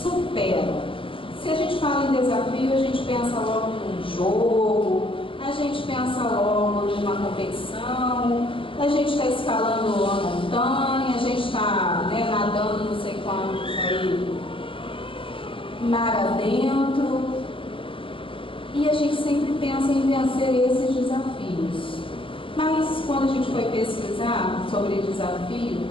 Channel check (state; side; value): late; right; 0.25 ms